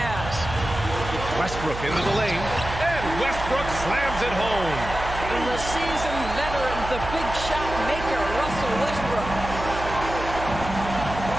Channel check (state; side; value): noise; right; hum, 8 dB below the sound